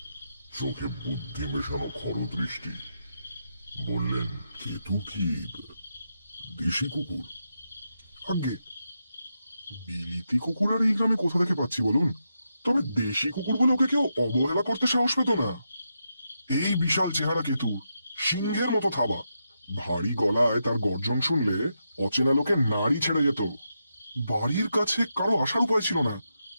চোখে বুদ্ধি মেশানো খরদৃষ্টি। বললেন, কেতু কি দেশি কুকুর? আগে বিলিতি কুকুর আর এই গ্রামে কোথা থেকে পাচ্ছি বলুন? তবে দেশি কুকুর বলে ওকে কেউ অবহেলা করতে সাহস পেত না। এই বিশাল চেহারা কেতু, সিংহের মতো থাবা, ভারী গলায় তার গর্জন শুনলে অচেনা লোকে নাড়ি ছেড়ে যেত। বাড়ির কাছে কারো আসার উপায় ছিল না,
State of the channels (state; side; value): inverted; both; correlation -0.84